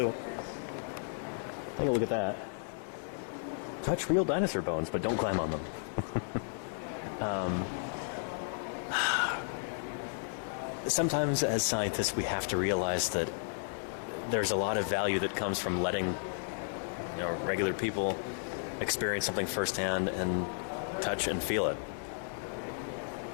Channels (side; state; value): right; silent; digital silence